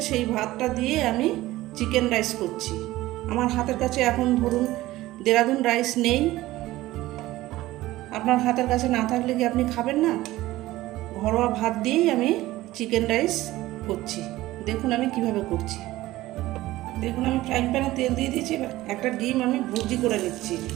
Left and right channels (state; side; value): quieter; left; 16.9 dB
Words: সেই ভাতটা দিয়ে আমি চিকেন রাইস করছি। আমার হাতের কাছে এখন ধরুন দেরাদুন রাইস নেই। আপনার হাতের কাছে না থাকলে কি আপনি খাবেন না? ঘরোয়া ভাত দিয়েই আমি চিকেন রাইস করছি। দেখুন আমি কিভাবে করছি। দেখুন আমি ফ্রাইং প্যানে তেল দিয়ে দিয়েছি। একটা ডিম আমি ভুর্জি করে নিচ্ছি।